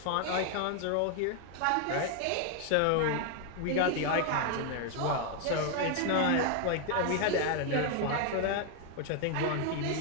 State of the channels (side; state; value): both; different; correlation 0.00